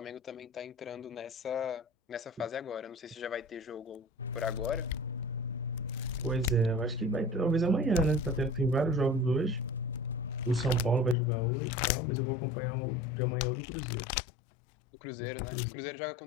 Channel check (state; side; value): drops out; right; at 11.2 s